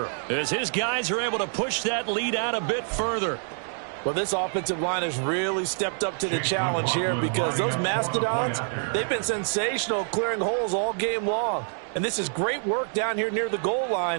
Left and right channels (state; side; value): silent; left; 59 dB below the other